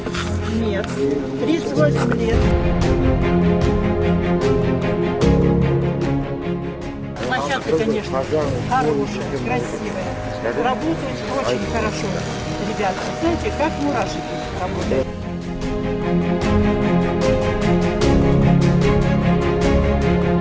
Нет. 38 лет. Площадка, конечно, хорошая, красивая. Работают очень хорошо. Ребята, знаете, как мурашки работают.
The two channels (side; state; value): both; identical; correlation 1.00